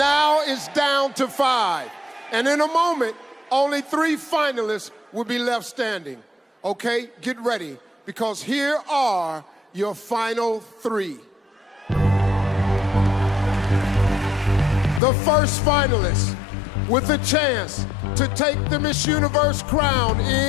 it's down to 5. And in a moment, only 3 finalists will be left standing. Okay, get ready, because here are your final 3. The first finalist with a chance to take the Miss Universe crown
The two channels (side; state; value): right; drops out; at 15.0 s